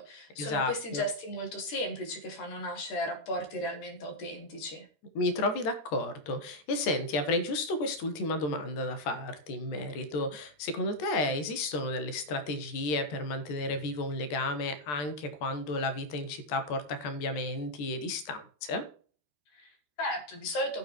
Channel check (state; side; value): late; right; 13 ms